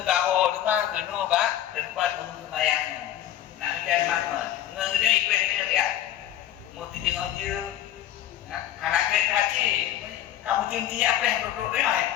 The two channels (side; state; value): right; quieter; 11.9 dB